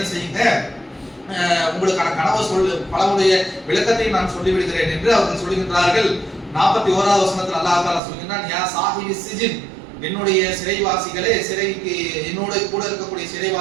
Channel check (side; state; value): left; drops out; at 8.0 s